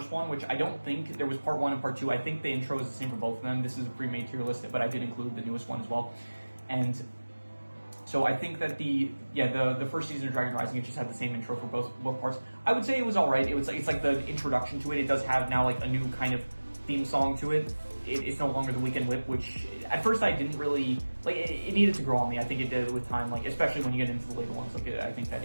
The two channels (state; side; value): inverted; both; correlation -1.00